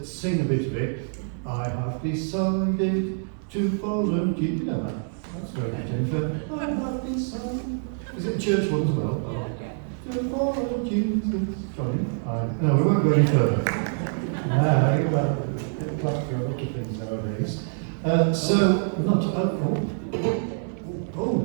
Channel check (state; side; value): silent; left; 61 dB below the other